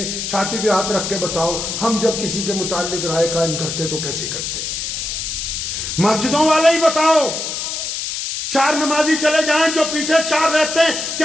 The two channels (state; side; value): noise; left; hiss, 4 dB below the sound